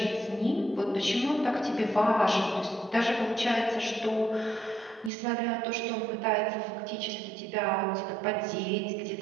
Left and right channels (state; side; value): drops out; left; at 5.1 s